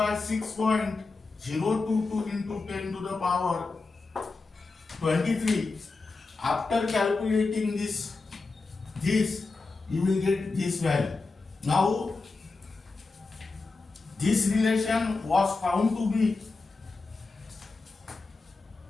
6.022 into 10 to the power 23. After calculating this you will get this value. Now this relation was found to be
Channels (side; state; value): right; quieter; 3.9 dB